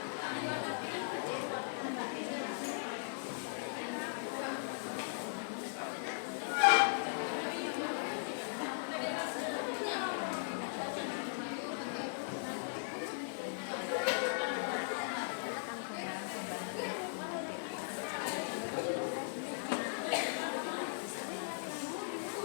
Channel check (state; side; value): silent; right; digital silence